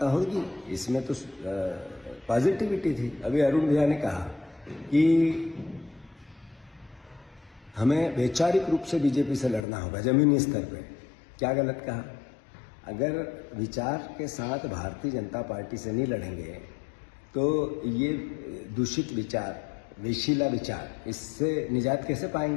होगी। इसमें तो पॉजिटिविटी थी। अभी अरुण भैया ने कहा कि हमें वैचारिक रूप से बीजेपी से लड़ना होगा जमीनी स्तर पे। क्या गलत कहा? अगर विचार के साथ भारतीय जनता पार्टी से नहीं लड़ेंगे तो ये दूषित विचार, विशीला विचार, इससे निजात कैसे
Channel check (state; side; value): drops out; right; at 9.6 s